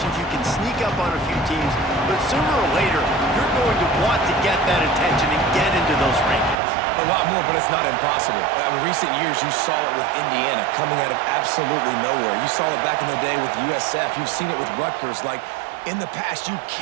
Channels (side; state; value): left; drops out; at 6.6 s